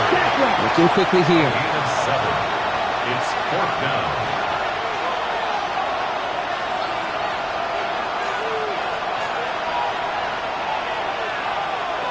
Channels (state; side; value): identical; both; correlation 1.00